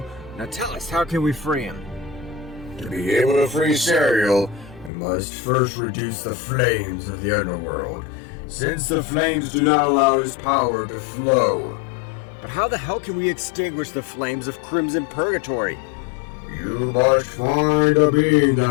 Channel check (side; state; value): right; drops out; at 4.9 s